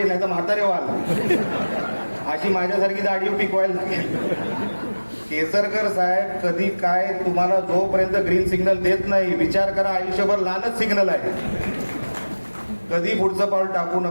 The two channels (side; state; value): both; inverted; correlation -1.00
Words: नाही तर म्हातारे व्हाल. अशी माझ्यासारखी दाढी पिकवायला लागेल. केसरकर साहेब कधी काय तुम्हाला जोपर्यंत ग्रीन सिग्नल देत नाही, विचार करा, आयुष्यभर लालच सिग्नल आहे. कधी पुढचं पाऊल टाकू